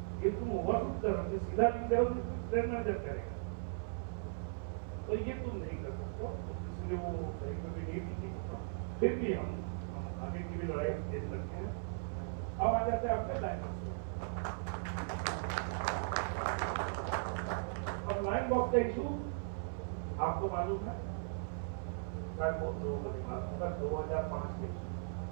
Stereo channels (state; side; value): silent; left; 52 dB below the other